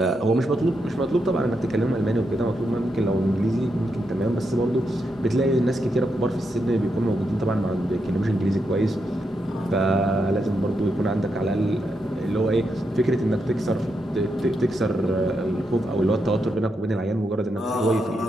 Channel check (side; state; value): both; normal; correlation 0.83